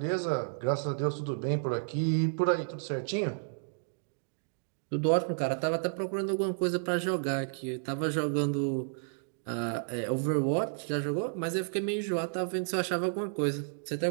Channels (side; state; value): left; silent; digital silence